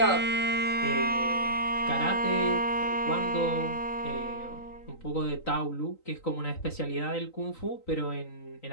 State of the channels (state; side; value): late; right; 3.9 ms